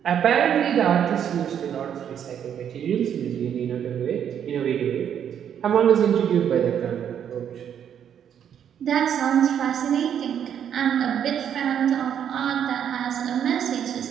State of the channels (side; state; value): left; quieter; 8.9 dB